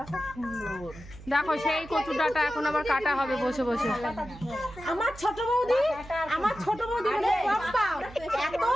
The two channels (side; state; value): right; noise; hum, 17 dB below the sound